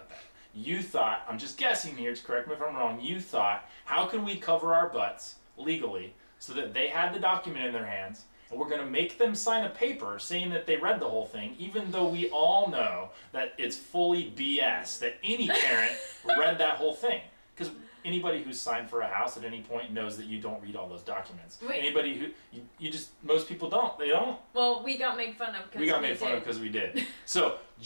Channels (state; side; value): inverted; both; correlation -1.00